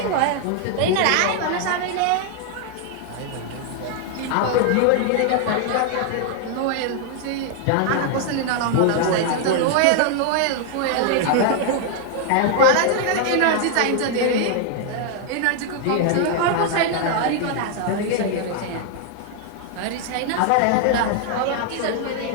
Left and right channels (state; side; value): different; both; correlation 0.00